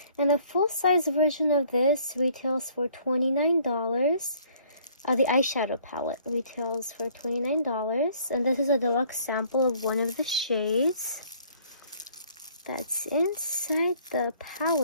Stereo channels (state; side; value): inverted; both; correlation -0.59